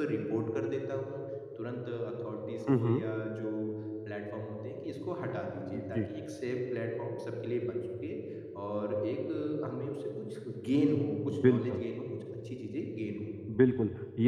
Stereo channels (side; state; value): both; identical; correlation 1.00